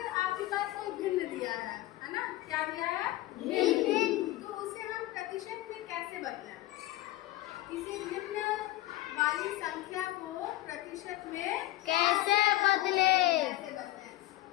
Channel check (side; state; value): right; quieter; 16.5 dB